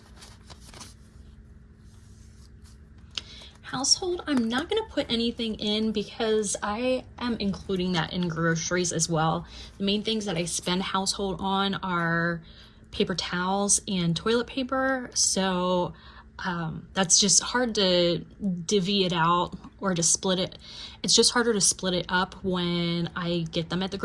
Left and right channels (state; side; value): identical; both; correlation 1.00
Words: Household, I'm not going to put anything in because I am including that in groceries as well. The main things that I spend household on are paper towels and toilet paper, so that's just hard to divvy it out or to split it. It's just harder to split it up when I get them at the